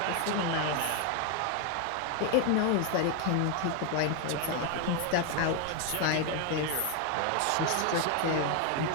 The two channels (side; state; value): both; different; correlation 0.01